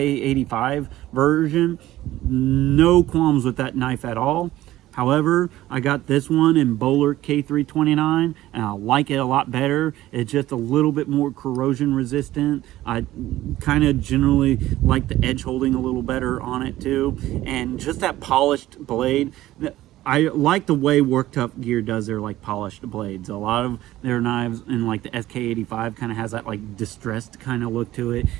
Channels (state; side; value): quieter; left; 15.3 dB